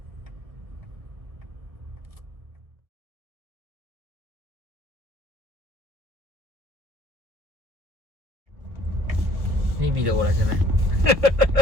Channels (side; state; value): left; late; 1.7 ms